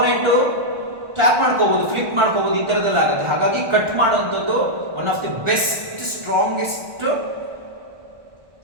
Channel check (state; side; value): late; left; 1.4 ms